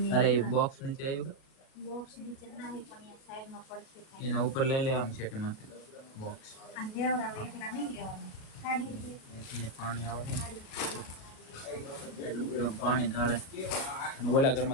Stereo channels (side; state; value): right; late; 37 ms